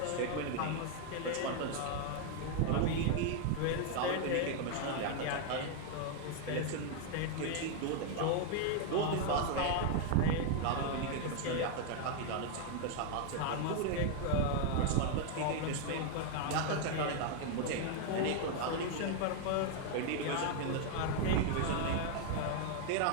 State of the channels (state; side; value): different; both; correlation 0.00